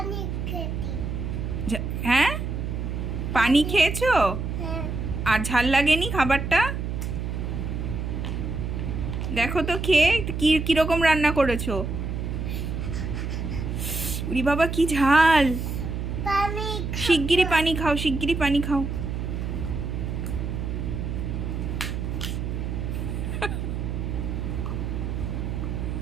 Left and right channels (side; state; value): right; noise; hum, 3 dB below the sound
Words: হ্যাঁ, পানি খেয়েছো? আর ঝাল লাগেনি খাবারটা? দেখো তো খেয়ে কিরকম রান্না করেছো। উরি বাবা, কি ঝাল! শিগগিরই পানি খাও, শিগগিরই পানি খাও।